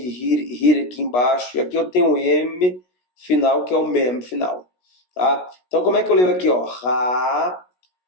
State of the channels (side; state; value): right; late; 16 ms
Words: embaixo, e aqui eu tenho o M final, que é o Mem final. Tá? Então, como é que eu leio aqui? Ó? Ra,